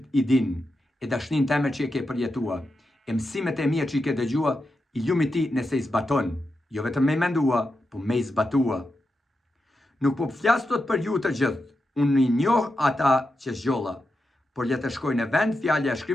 I din, e dashnin teme që e ke përjetua, e mësimet e mia që I ke dëgjua, I ljumi ti nëse I zbaton. Jo vetëm me I mendua, po me I zbatua. Nuk po flas tot për ju të gjithë, unë I njoh ata që zgjolla, por le të shkoj në vend fjalja e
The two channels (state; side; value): normal; both; correlation 0.88